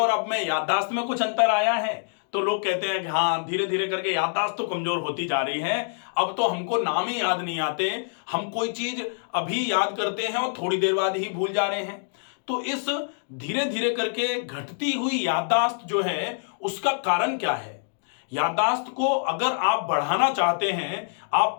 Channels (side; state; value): right; silent; digital silence